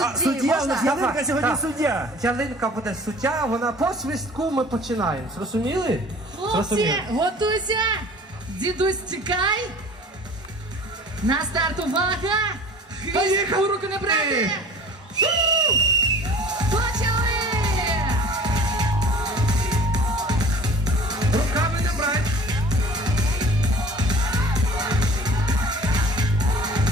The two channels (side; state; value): both; normal; correlation 0.45